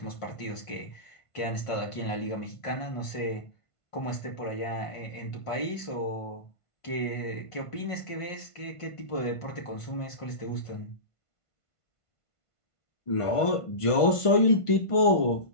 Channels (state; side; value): late; right; 1.5 ms